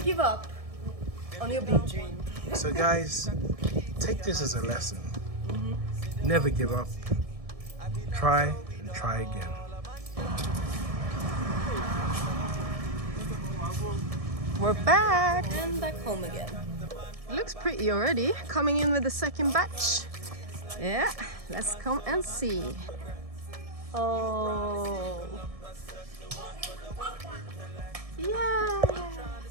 up on your big dream. So guys, take this as a lesson. Never give up. Try and try again. We're back. And back home again. Looks pretty already. Coming in with the second batch. Yeah, let's come and see. Oh. Yay!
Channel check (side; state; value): left; late; 1.7 ms